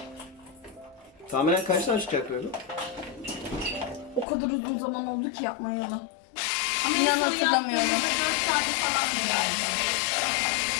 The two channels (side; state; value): right; drops out; at 4.2 s